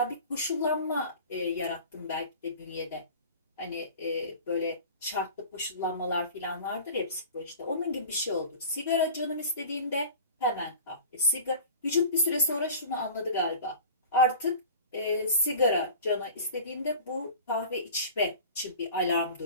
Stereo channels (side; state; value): both; inverted; correlation -0.40